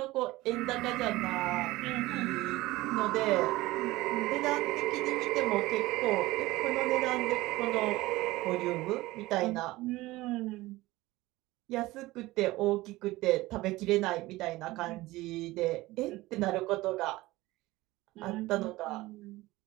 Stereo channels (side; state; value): left; quieter; 19.0 dB